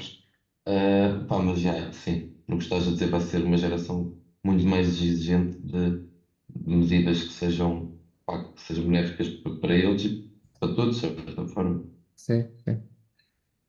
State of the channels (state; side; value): identical; both; correlation 1.00